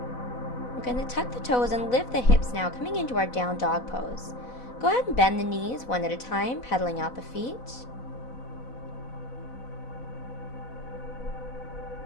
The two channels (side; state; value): right; late; 4.0 ms